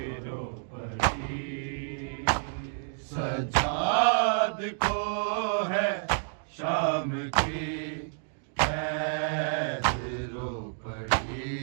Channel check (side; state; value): left; silent; digital silence